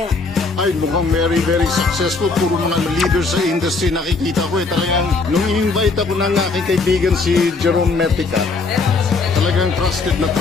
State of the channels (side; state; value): right; quieter; 4.0 dB